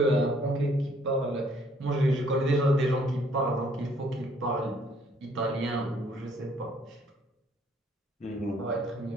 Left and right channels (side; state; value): both; normal; correlation 0.63